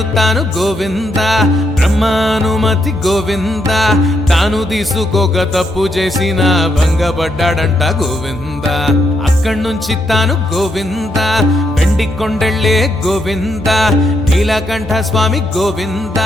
తాను గోవింద బ్రహ్మానుమతి గోవింద తాను తీసుకోక తప్పు చేసిన భంగపడ్డాడంట గోవింద అక్కడి నుంచి తాను గోవింద వెండి కొండెళ్ళే గోవింద నీలకంఠ స్వామి గోవింద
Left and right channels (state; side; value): normal; both; correlation 0.78